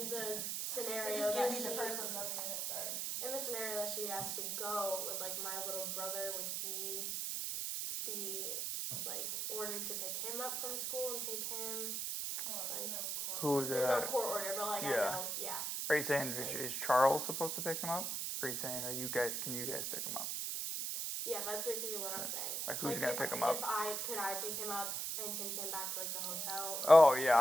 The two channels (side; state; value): right; noise; hiss, 1 dB below the sound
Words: the It scenario just that gave me she, the purse with nothing in it. Sorry. in the scenario that she has to go with like my little brother, would he be like ordered to pick him up from school and take him? Like, Who there's no court order, but like I yeah. know, yeah. Are you saying is Charles supposed to pick him up? Or are you saying can you guys pick him up? Yeah, that's basically what I'm saying. Like who's gonna pick him up? Could I pick him up and take him back to like the hotel? Oh yeah,